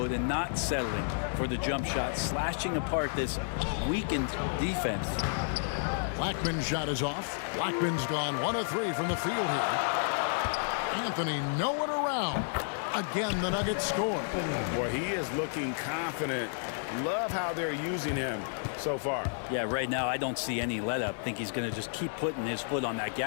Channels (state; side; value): silent; right; digital silence